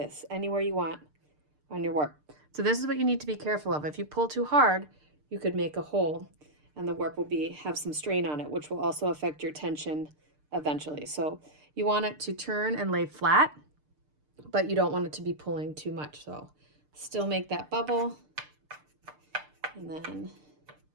anywhere you want on your warp. So this is what you need to be careful of. If you pull too hard, you could make a hole and the warp will have some strain on it, which will also affect your tension eventually. So you want it to turn and lay flat, but you don't want it to be pulling too much. So still make that bubble and then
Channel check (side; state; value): left; late; 6.7 ms